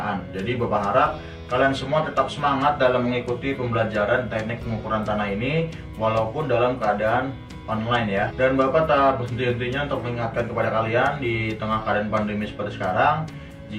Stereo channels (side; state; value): both; identical; correlation 1.00